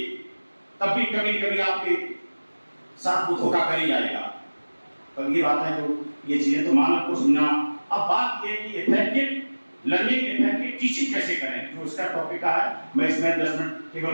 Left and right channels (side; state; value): both; inverted; correlation -1.00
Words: तब भी कभी आपके साथ वो धोखा कर ही जाएगा। तो ये बात है, जो ये चीजें तो मानव को सुनना। अब बात ये कि इफेक्टिव लर्निंग, इफेक्टिव टीचिंग कैसे करें, जो इसका टॉपिक है। मैं इसमें 10 मिनट केवल